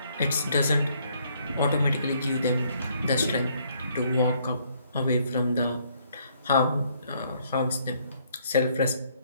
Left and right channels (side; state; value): both; inverted; correlation -0.67